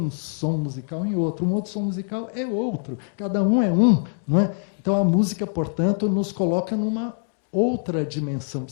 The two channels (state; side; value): silent; right; 63 dB below the other